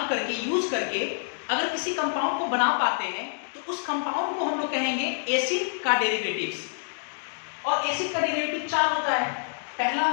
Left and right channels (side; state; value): right; silent; digital silence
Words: करके, यूज करके अगर किसी कंपाउंड को बना पाते हैं, तो उस कंपाउंड को हम लोग कहेंगे एसिड का डेरिवेटिव्स। और एसिड का डेरिवेटिव 4 होता है। पहला